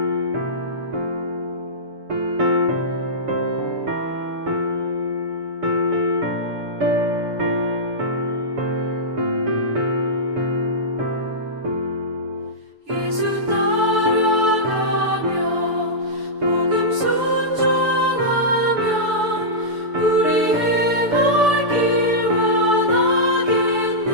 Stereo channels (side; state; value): left; late; 6.9 ms